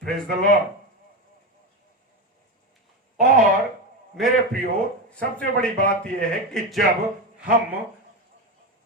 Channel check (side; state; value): both; normal; correlation 0.16